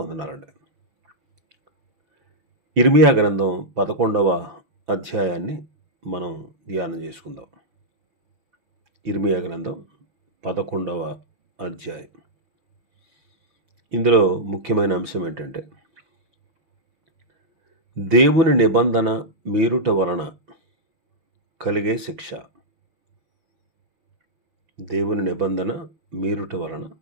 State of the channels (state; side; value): late; left; 6.0 ms